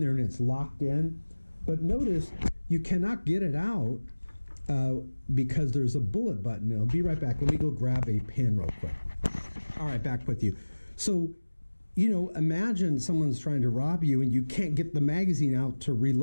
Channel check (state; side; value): inverted; both; correlation -1.00